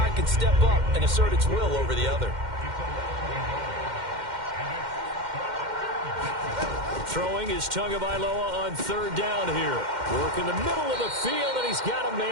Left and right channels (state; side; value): late; left; 2.1 ms